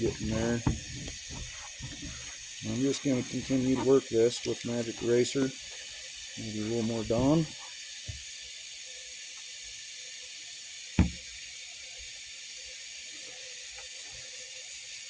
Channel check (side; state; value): both; identical; correlation 1.00